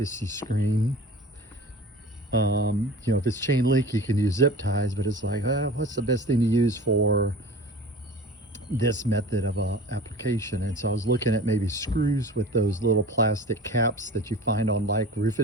screen, if it's chain link, you can use zip ties, but it's like, what's the best thing to use for this method of application? And so I was looking at maybe screws with those little plastic caps that you find on like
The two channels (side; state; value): both; normal; correlation 0.39